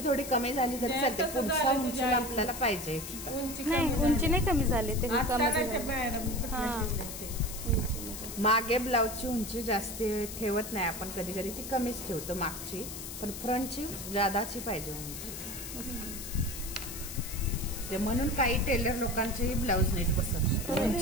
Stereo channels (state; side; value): noise; left; hiss, 9 dB below the sound